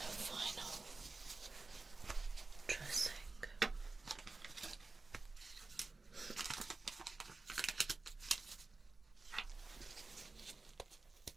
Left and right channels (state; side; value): quieter; left; 3.6 dB